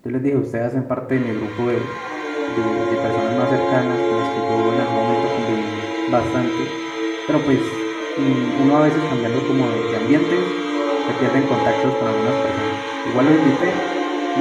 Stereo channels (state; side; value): identical; both; correlation 1.00